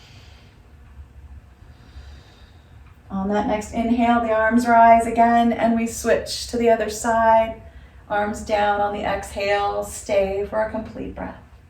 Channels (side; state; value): both; identical; correlation 1.00